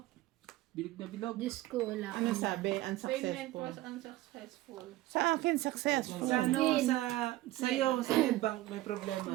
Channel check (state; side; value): quieter; left; 16.8 dB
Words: bilog na bilog. Diyos ko, wala. Ano sabi? Payment Unsuccessful. was unsuccessful. Sa akin, successful. Sa ano, sa'yo, sa Netbank may problema.